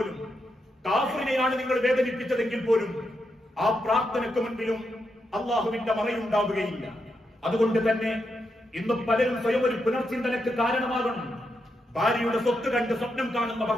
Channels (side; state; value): both; normal; correlation 0.83